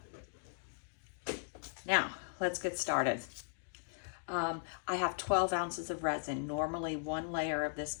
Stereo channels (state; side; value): silent; right; digital silence